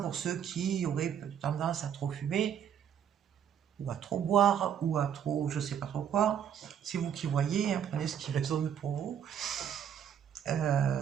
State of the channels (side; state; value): left; quieter; 8.7 dB